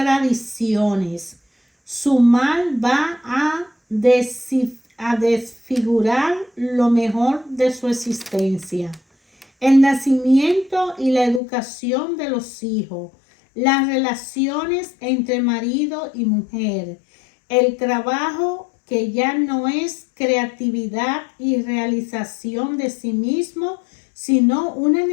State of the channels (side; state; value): right; drops out; at 11.4 s